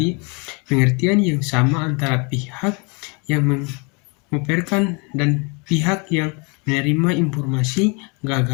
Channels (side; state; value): right; quieter; 32.2 dB